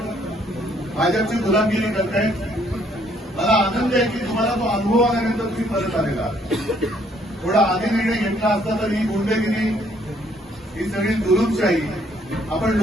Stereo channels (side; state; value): both; normal; correlation 0.66